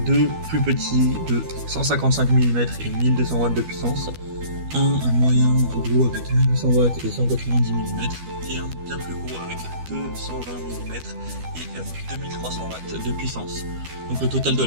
2 plus petits de 155 mm et 1200 watts de puissance, un moyen gros avec 1800 watts et 190 mm, et un bien plus gros avec 220 mm et 2300 watts de puissance. Donc le total de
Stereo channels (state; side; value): late; left; 12 ms